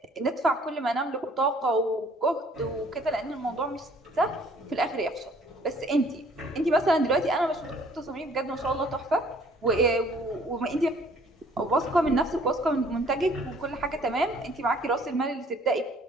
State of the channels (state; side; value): normal; both; correlation 0.58